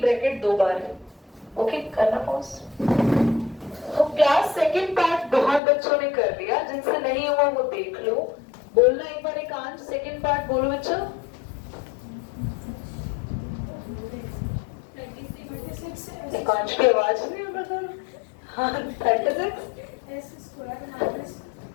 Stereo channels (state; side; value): drops out; right; at 5.6 s